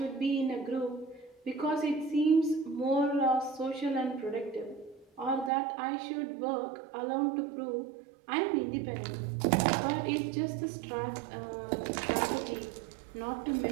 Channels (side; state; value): left; drops out; at 5.5 s